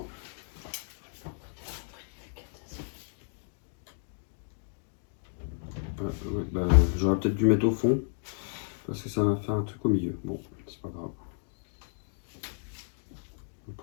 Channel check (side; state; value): right; silent; digital silence